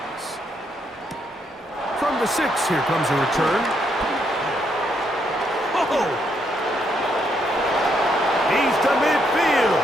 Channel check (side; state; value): both; normal; correlation 0.75